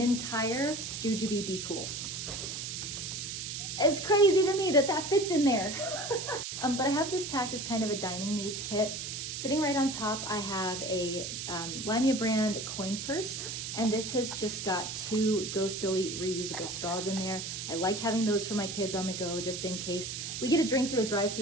Jujube Be Cool. It's crazy to me that that fits in there. But I have this packed as kind of a dining needs kit. Sitting right on top, I have a Limea brand coin purse, and this has just got 2 Go Silly reusable straws in there. I like having those for my kids on the go, just in case we get a drink through a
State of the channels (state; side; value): noise; right; hiss, 5 dB below the sound